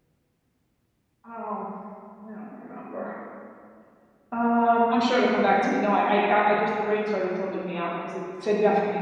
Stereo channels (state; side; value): identical; both; correlation 1.00